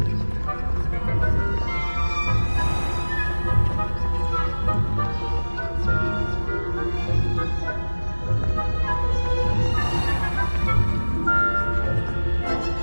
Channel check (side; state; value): both; inverted; correlation -1.00